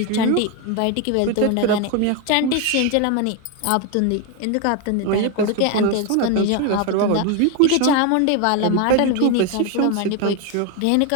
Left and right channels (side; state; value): both; different; correlation 0.01